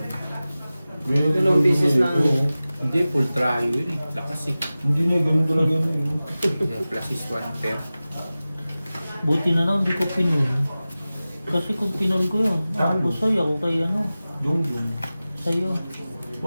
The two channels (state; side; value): inverted; both; correlation -0.96